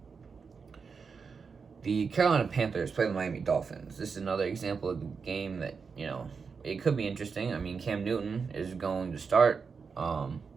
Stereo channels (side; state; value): left; quieter; 5.4 dB